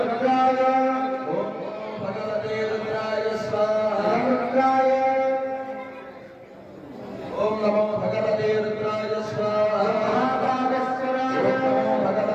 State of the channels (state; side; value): identical; both; correlation 1.00